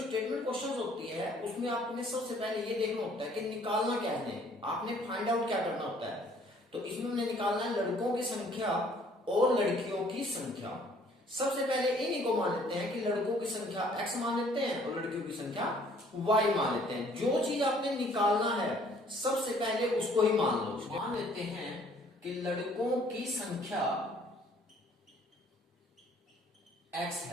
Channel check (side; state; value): both; normal; correlation 0.59